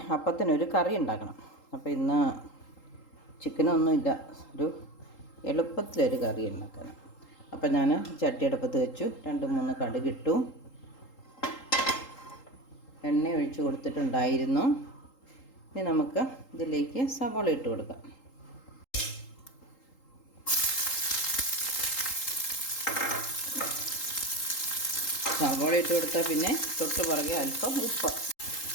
അപ്പത്തിനൊരു കറി ഉണ്ടാക്കണം. അപ്പോൾ ഇന്ന് ചിക്കനൊന്നുമില്ല, ഒരു എളുപ്പത്തിലൊരു കറി ഉണ്ടാക്കണം. അപ്പം ഞാൻ ചട്ടിയടുപ്പത്ത് വെച്ചു, 2-3 കടുകിട്ടു, എണ്ണ ഒഴിച്ച് കൊടുത്തിട്ടുണ്ടായിരുന്നു. ഇനി നമുക്ക് ഇതിലേക്ക് സവാള ഇട്ട് കൊടുക്കാം. സവാള ഇട്ട് കൊടുത്താൽ പിന്നെ തൊട്ട് പുറകെ അല്പം ഉപ്പ്.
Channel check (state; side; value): late; right; 3.8 ms